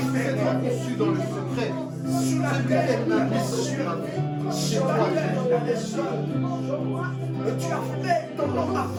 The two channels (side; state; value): both; identical; correlation 1.00